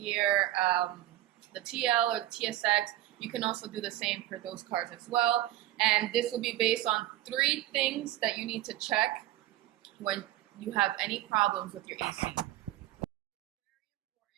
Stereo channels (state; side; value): quieter; left; 14.8 dB